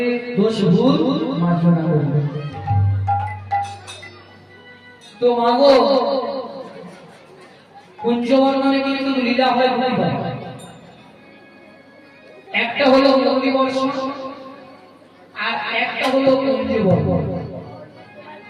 দোষ ভুল মার্জনা করবে। তো মাগো, কুঞ্জবর্ণনে কিন্তু লীলা হয় দুইবার, একটা হলো মুরলী বর্ষণ আর একটা হলো কুঞ্জবর্ণন।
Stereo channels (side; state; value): both; identical; correlation 1.00